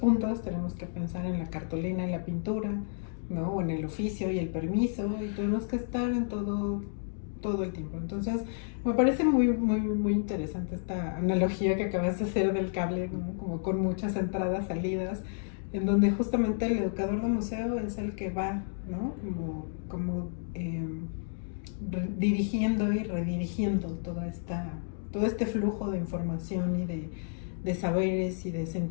tenemos que pensar en la cartulina y la pintura, ¿no? O en el oficio y el permiso, y tenemos que estar en todo el tiempo. Entonces, me parece muy, muy, muy interesante esta analogía que acabas de hacer del cable, ¿no? Como con muchas entradas, salidas, en donde justamente el educador de museo es el que va, ¿no? Como dirigiendo y redirigiendo todo este flujo de información y de saberes y de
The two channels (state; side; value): silent; right; digital silence